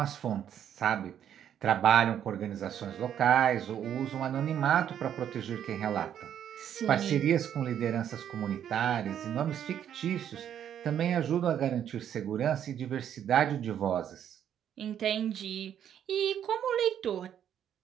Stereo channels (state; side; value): quieter; left; 9.7 dB